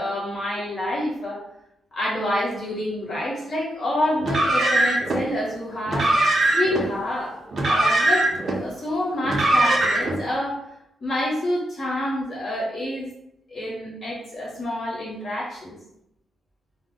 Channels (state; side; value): normal; both; correlation 0.83